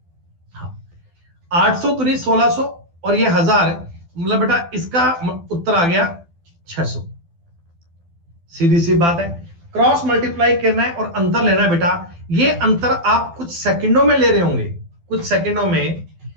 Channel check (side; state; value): left; late; 12 ms